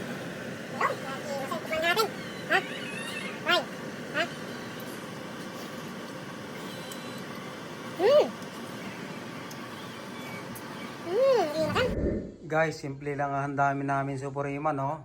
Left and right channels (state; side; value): identical; both; correlation 1.00